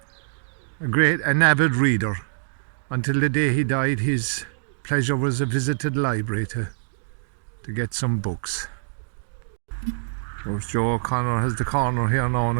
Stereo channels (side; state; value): left; silent; digital silence